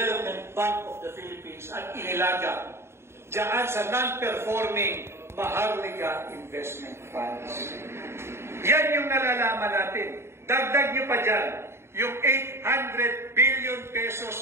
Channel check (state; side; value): late; left; 0.12 ms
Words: Bank of the Philippines at inilaga diyan sa non-performing Maharlika Investment Funds. Yan yung nalalaman natin. Dagdag nyo pa dyan, yung 800 billion